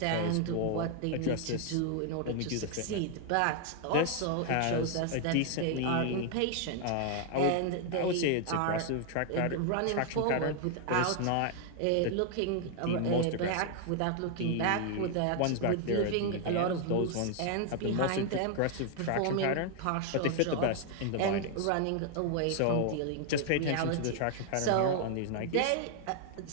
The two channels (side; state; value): both; different; correlation 0.00